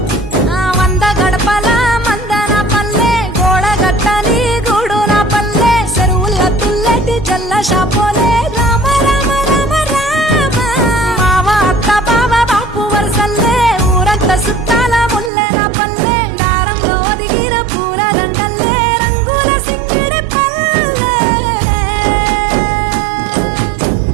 వంద గడపల మందన పల్లె గోడ గట్టని గూడు నా పల్లె చెరువుల తుల్లటి జల్ల షాపోలే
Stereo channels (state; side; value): drops out; left; at 15.3 s